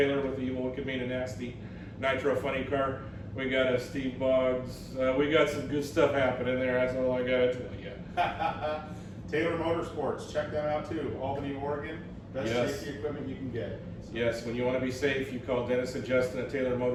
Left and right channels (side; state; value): both; identical; correlation 1.00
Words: with the Evil Wicked Mean and Nasty Nitro Funny Car. We got a Steve Boggs. We got some good stuff happening there. That's all I got to tell you. Taylor Motorsports, check them out too. Albany, Oregon. Best Yes. safety equipment you can get. So, Yes, when you want to be safe, you call Dennis and Justin at Taylor